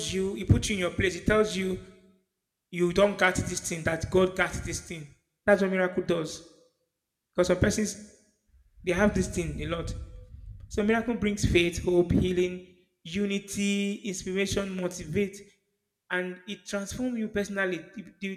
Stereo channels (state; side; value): identical; both; correlation 1.00